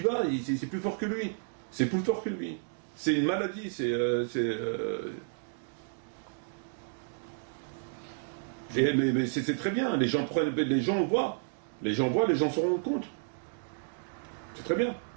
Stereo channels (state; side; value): silent; left; digital silence